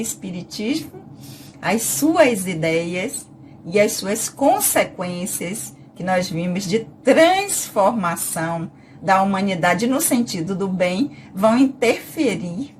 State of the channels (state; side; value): identical; both; correlation 1.00